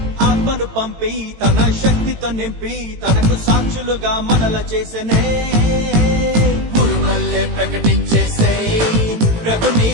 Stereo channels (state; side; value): late; left; 18 ms